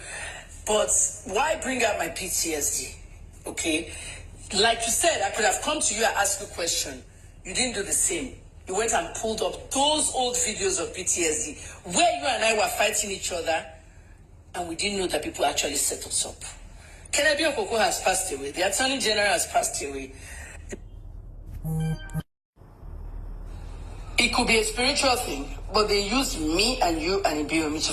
but why bring up my PTSD? Okay, like you said, I could have come to you and asked you a question. You didn't do the same. You went and pulled up those old videos of PTSD where you and I were fighting each other, and we didn't know that people actually set us up. Kennedy Okoko has passed away. The Attorney General has passed away. It could be a spiritual thing, but they used me and you and Ibiomi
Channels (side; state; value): both; identical; correlation 1.00